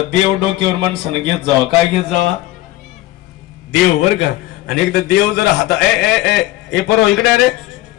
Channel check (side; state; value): right; quieter; 16.6 dB